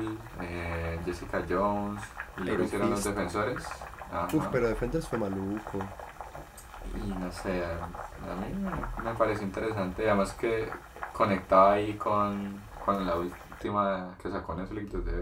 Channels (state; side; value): identical; both; correlation 1.00